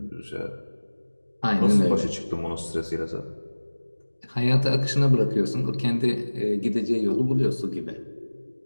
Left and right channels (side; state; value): both; inverted; correlation -1.00